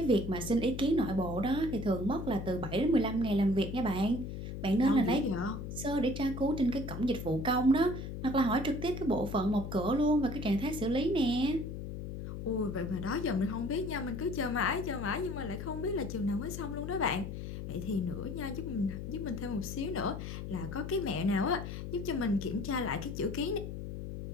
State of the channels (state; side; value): noise; left; hum, 7 dB below the sound